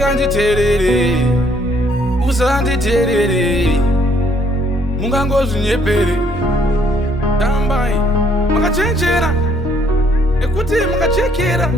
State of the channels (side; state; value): both; normal; correlation 0.65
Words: usanditerere mungangozvinyepere tambai makachenjera nekuti makachekera